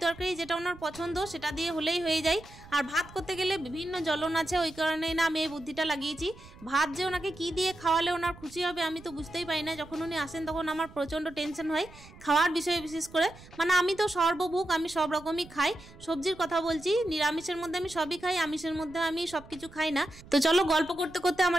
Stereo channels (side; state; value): right; noise; rumble, 20 dB below the sound